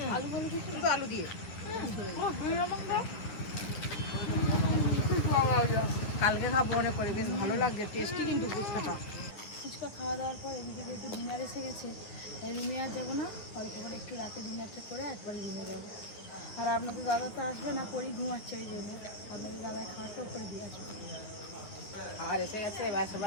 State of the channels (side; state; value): right; late; 9.7 ms